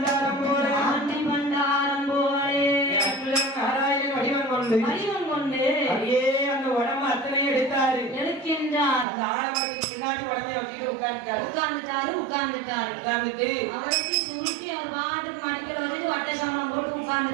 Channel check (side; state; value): left; drops out; at 9.1 s